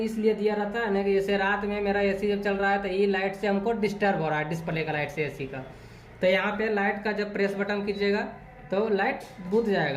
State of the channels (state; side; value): identical; both; correlation 1.00